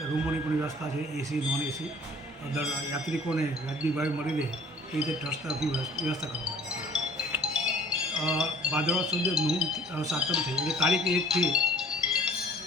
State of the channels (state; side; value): normal; both; correlation 0.52